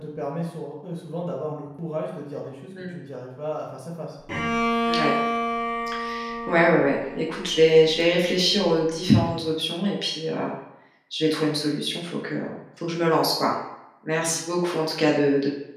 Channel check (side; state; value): both; identical; correlation 1.00